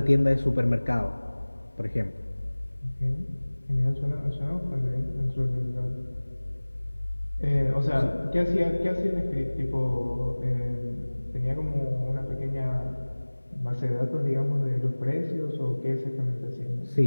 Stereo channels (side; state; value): both; inverted; correlation -1.00